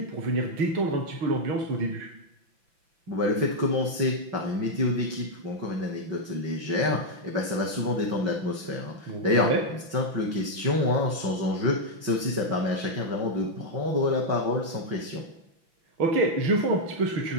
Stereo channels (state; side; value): late; left; 6.0 ms